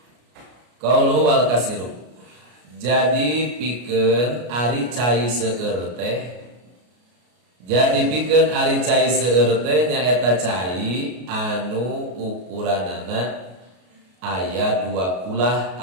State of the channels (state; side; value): late; left; 33 ms